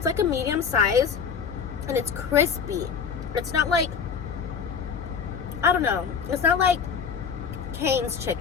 like a medium size, and it's crispy. It's not like, I don't know, it's not like Cane's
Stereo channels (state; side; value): quieter; right; 6.4 dB